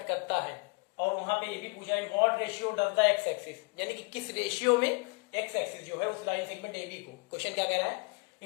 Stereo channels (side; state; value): right; quieter; 29.4 dB